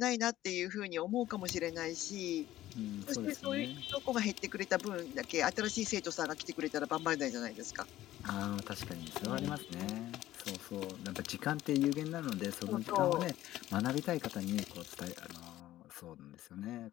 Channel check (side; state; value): right; quieter; 14.4 dB